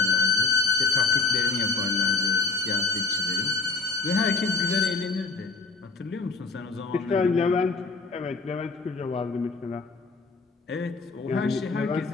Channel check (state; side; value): quieter; right; 4.1 dB